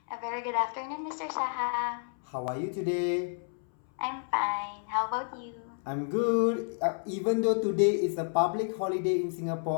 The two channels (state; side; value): silent; right; 57 dB below the other